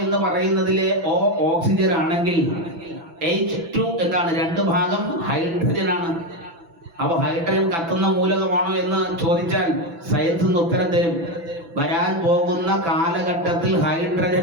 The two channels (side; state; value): left; late; 6.0 ms